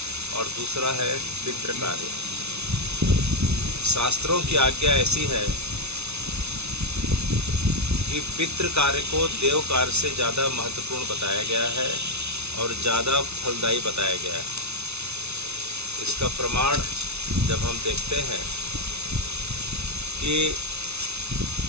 और दूसरा है पितृ कार्य। शास्त्रों की आज्ञा ऐसी है कि पितृ कार्य को देव कार्य से ज़्यादा महत्वपूर्ण बताया गया है और ज़्यादा फलदायी बताया गया है। इसका प्रमाण जब हम देखते हैं कि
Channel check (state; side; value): late; left; 0.81 ms